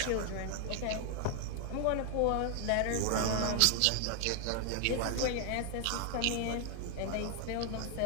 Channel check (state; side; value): different; both; correlation 0.00